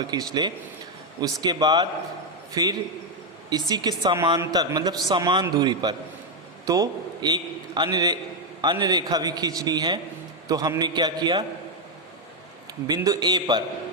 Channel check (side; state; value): both; normal; correlation 0.03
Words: खींच ले। उसके बाद फिर इसी के समांतर मतलब समान दूरी पर तो एक अन्य रेखा भी खींचनी है। तो हमने क्या किया, बिंदु A